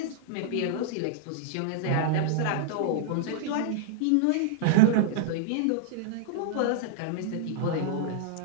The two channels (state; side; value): different; both; correlation -0.01